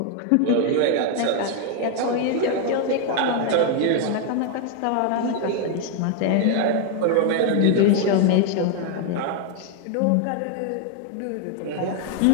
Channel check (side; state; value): both; different; correlation 0.00